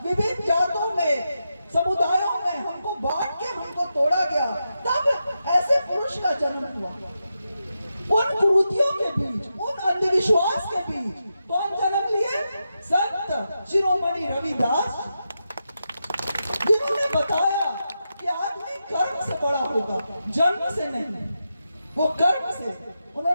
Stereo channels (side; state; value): both; inverted; correlation -0.87